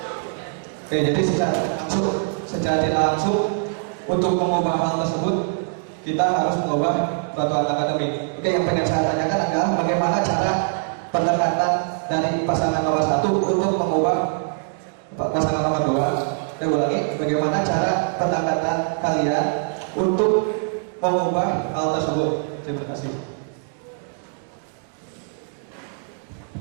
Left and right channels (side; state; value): left; silent; digital silence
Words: Oke, jadi secara tidak langsung untuk mengubah hal tersebut kita harus mengubah peraturan akademik. Oke, yang pengen saya tanyakan adalah bagaimana cara pendekatan dari pasangan nomor 1 untuk mengubah pasangan nomor 2. Saya ulangi, bagaimana cara pendekatan kalian untuk mengubah hal tersebut. Terima kasih.